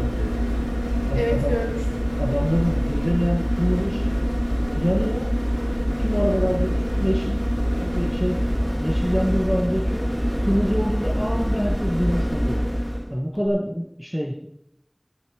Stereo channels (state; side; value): identical; both; correlation 1.00